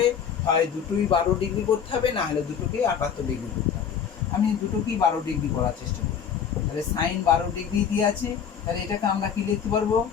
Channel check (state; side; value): quieter; right; 7.7 dB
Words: হয় দুটোই 12 ডিগ্রি করতে হবে, না হলে দুটোকেই 78 ডিগ্রি করতে হবে। আমি দুটোকেই 12 ডিগ্রি করার চেষ্টা করি, তাহলে sin 12 ডিগ্রি দিয়ে আছে, তাহলে এটাকে আমরা কি লিখতে পারবো,